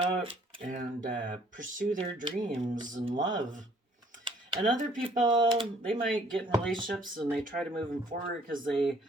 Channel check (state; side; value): normal; both; correlation 0.60